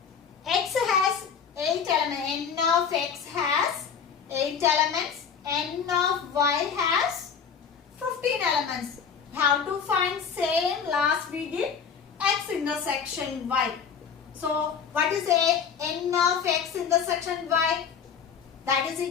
x has 8 elements, n of x has 8 elements, n of y has 15 elements. Have to find same last we did x intersection y. So what is n of x intersection y? That is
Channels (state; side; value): quieter; right; 6.7 dB